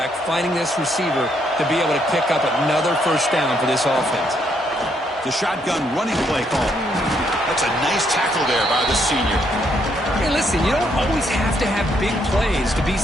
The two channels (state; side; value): normal; both; correlation 0.73